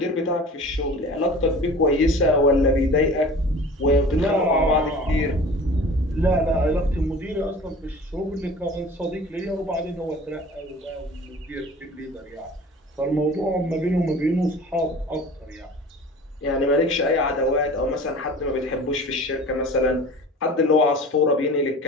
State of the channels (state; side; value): normal; both; correlation 0.41